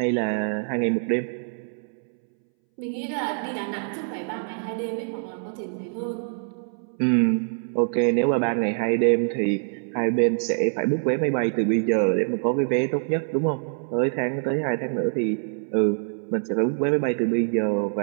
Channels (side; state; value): left; silent; 62 dB below the other